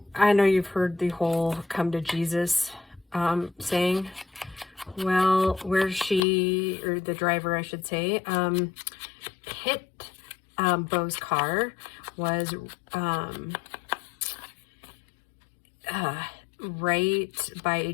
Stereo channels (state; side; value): drops out; right; at 6.2 s